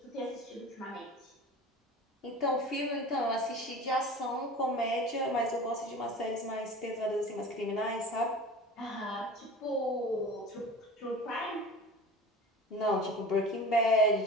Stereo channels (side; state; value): both; normal; correlation 0.37